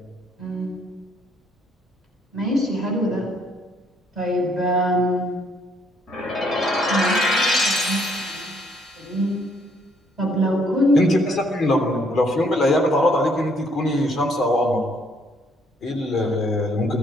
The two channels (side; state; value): both; normal; correlation 0.67